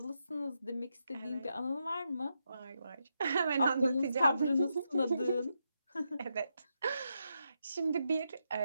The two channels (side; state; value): both; inverted; correlation -0.84